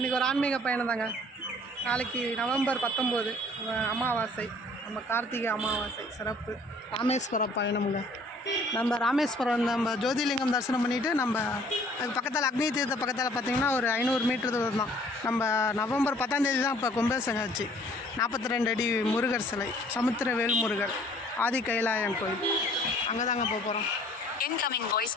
ஒரு ஆன்மீக பயணம் தாங்க. நாளைக்கு நவம்பர் 19 அமாவாசை, நம்ம கார்த்திகை அமாவாசை சிறப்பு ராமேஸ்வரம் பயணமுங்க. நம்ம ராமேஸ்வரம் நம்ம ஜோதிலிங்கம் தரிசனம் பண்ணிவிட்டு நம்ம அது பக்கத்தில் அக்னி தீர்த்த பக்கத்தில் பார்த்திங்கன்னா ஒரு 500 மீட்டர் தூரம் தான். நம்ம நவம்பர் 10ஆம் தேதி தான் இப்போ கும்பாபிஷேகம் ஆச்சு. 42 அடி முருகர் சிலை, சமுத்திரவேல் முருகர், ஆதி கைலாயம் கோயில், அங்கே தாங்க போக போகிறோம்.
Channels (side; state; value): both; normal; correlation 0.56